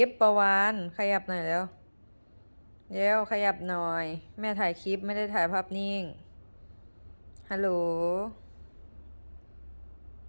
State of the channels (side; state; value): both; inverted; correlation -1.00